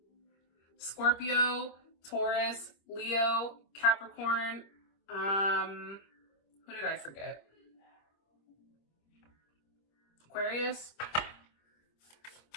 Scorpio, Taurus, Leo, Capricorn. Who did I forget? Aquarius.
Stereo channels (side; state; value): right; late; 25 ms